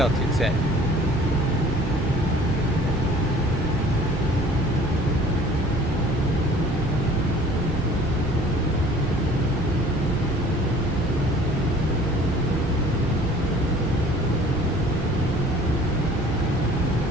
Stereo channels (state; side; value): normal; both; correlation 0.50